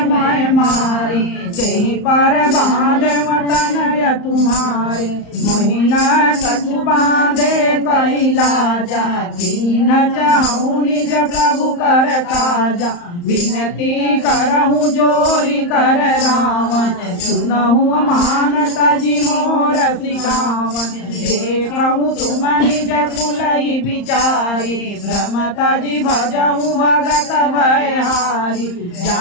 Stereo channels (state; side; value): late; right; 34 ms